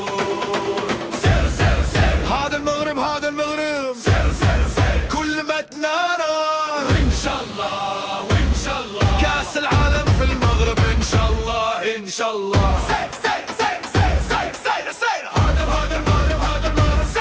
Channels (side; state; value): both; identical; correlation 1.00